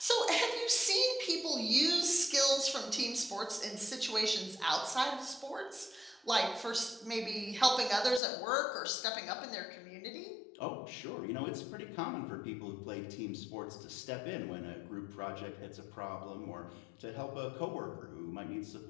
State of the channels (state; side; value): drops out; right; at 8.2 s